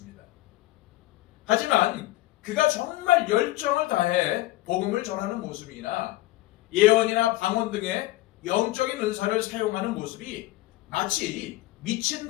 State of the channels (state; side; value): quieter; right; 17.5 dB